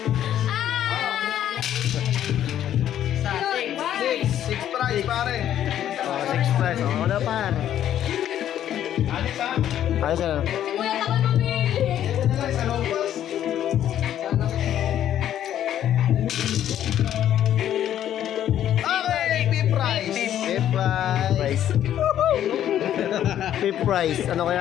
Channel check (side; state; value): right; quieter; 11.0 dB